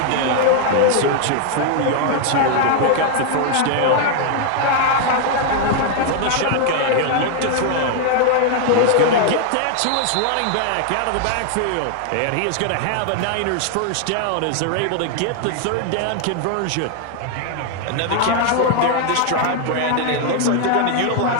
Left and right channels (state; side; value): different; both; correlation 0.00